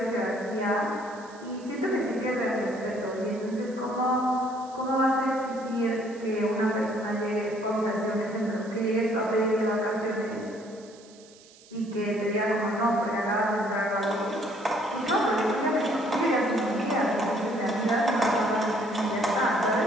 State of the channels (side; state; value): right; noise; hiss, 24 dB below the sound